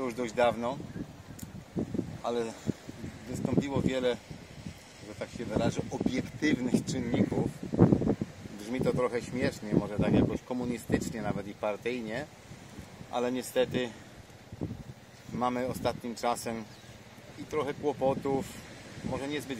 dość dawno, ale wystąpiło wiele, że tak się wyrażę, obiektywnych czynników. Brzmi to trochę śmiesznie, może tak jakoś komunistycznie nawet i partyjnie, ale niestety mamy ostatnim czasem i trochę kłopotów, może niezbyt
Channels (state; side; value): identical; both; correlation 1.00